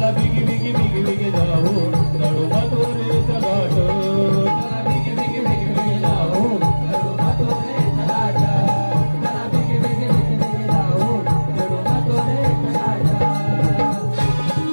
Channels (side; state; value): both; inverted; correlation -1.00